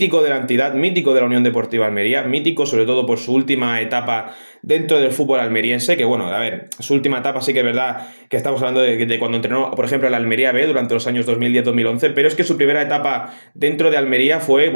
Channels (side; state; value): both; inverted; correlation -1.00